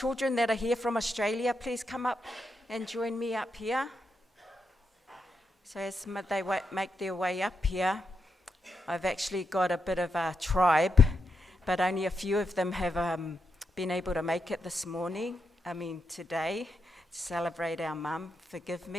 that are here from Australia, please come up and join me up here. So as they make their way up here, I've actually got a bit of a tribe, but only a few of them have been able to make it this morning, today, to celebrate our mum, forgive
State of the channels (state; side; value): normal; both; correlation 0.84